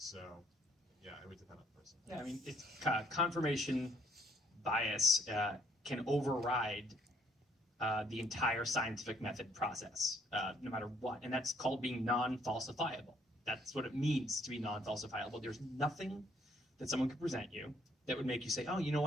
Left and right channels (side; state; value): both; normal; correlation 0.66